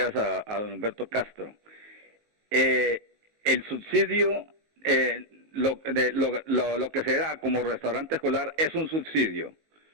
a don Humberto Castro. El subsidio, lo que se da como restaurante escolar es un subsidio,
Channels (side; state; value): left; late; 19 ms